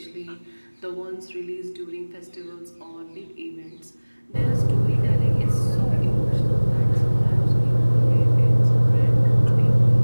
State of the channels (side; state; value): both; inverted; correlation -1.00